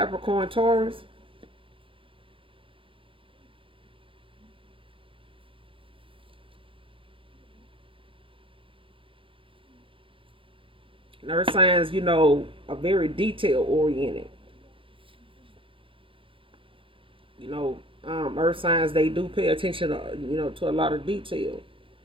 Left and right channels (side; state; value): left; late; 0.25 ms